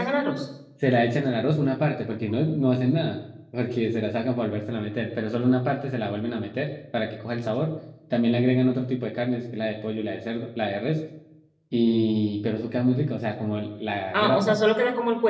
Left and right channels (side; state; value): both; identical; correlation 1.00